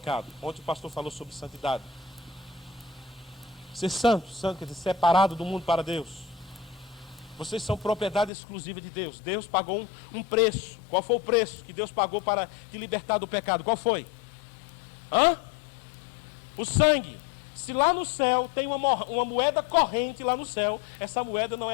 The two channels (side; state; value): right; drops out; at 8.3 s